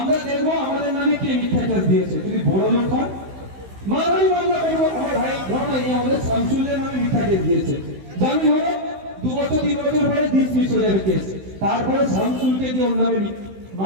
দেখবো আমাদের নামে কে মিথ্যা কেস দিয়েছে। যদি বড় লোক হয় মানহানি মামলা করবো। আমার ভাই ঘটনা এই আমাদের শামসুলের নামে মিথ্যা কেস দিয়েছে, জামিন হলো 2 বছর 3 বছর পরে ডিসমিস হয়ে যাবে কেস। তারপরে শামসুলকে দিয়ে ওর নামে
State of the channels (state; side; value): late; left; 16 ms